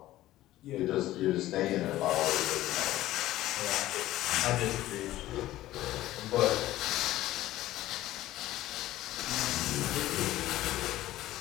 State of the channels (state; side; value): quieter; right; 15.3 dB